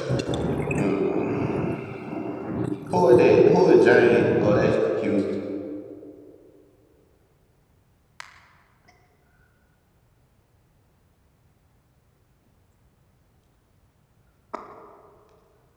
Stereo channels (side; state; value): both; identical; correlation 1.00